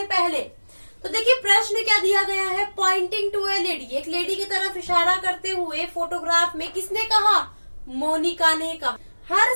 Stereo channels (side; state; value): both; inverted; correlation -1.00